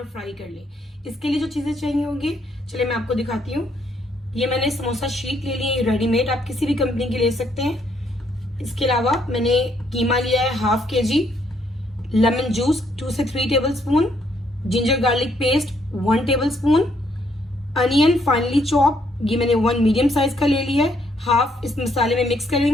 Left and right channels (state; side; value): normal; both; correlation 0.71